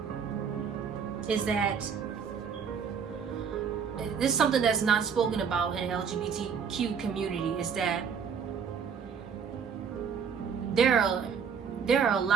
is that this is something that's not spoken about in the LGBTQ community, is that there are a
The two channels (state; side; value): quieter; left; 6.8 dB